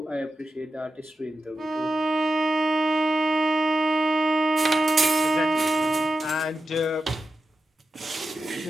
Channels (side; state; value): both; normal; correlation 0.90